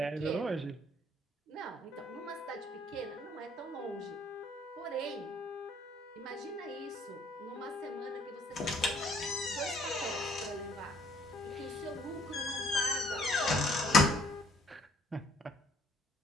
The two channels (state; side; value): normal; both; correlation 0.63